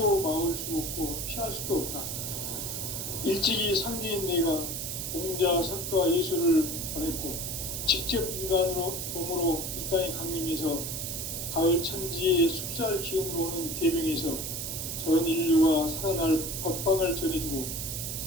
막을 수 없고 피할 수도 없다. 일찍이 상제인 내가 공자, 석가, 예수를 보냈고 직접 인간으로 몸으로 이 땅에 강림해서 가을 천지의 숲살 기운으로 오는 계명에서 전 인류가 살아날 법방을 전해주고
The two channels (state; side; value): noise; right; hiss, 4 dB below the sound